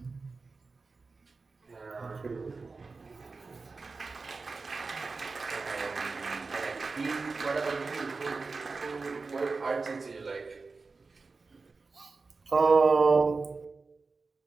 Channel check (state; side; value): quieter; left; 4.1 dB